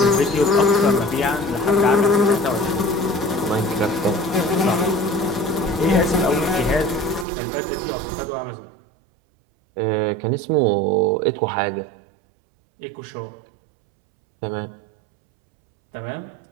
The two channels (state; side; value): drops out; left; at 7.2 s